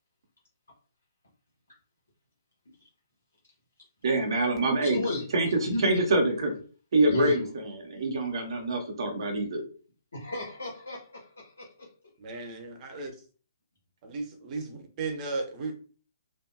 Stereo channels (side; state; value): both; inverted; correlation -0.67